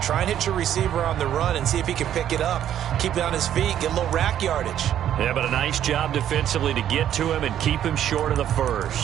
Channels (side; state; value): left; quieter; 10.6 dB